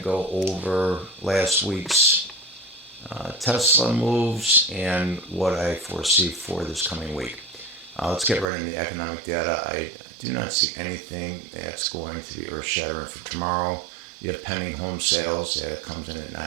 go over last week's Tesla moves and what I foresee for this coming week. Let's get right into the economic data. I do not see anything that's going to be earth shattering for tomorrow. You have pending home sales that comes in at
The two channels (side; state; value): left; drops out; at 8.5 s